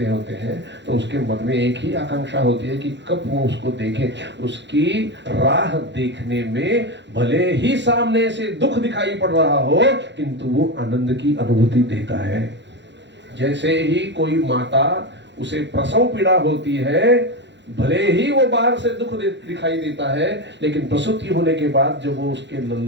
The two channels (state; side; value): late; left; 0.52 ms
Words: होते हैं, तो उसके मन में एक ही आकांक्षा होती है कि कब वो उसको देखे। उसकी राह देखने में भले ही सामने से दुख दिखाई पड़ रहा हो, किंतु वो आनंद की अनुभूति देता है। जैसे ही कोई माता उसे प्रसव पीड़ा होती है, भले ही वो बाहर से दुख दिखाई देता है, लेकिन प्रसूति होने के बाद जब वो उसके